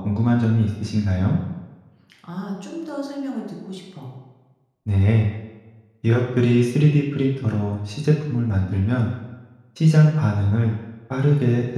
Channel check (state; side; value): identical; both; correlation 1.00